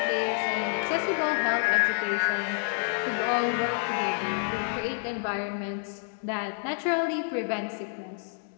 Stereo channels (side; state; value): right; silent; 59 dB below the other